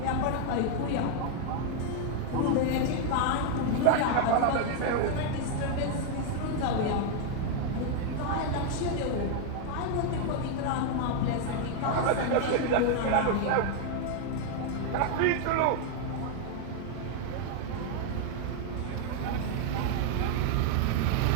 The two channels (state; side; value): different; both; correlation 0.00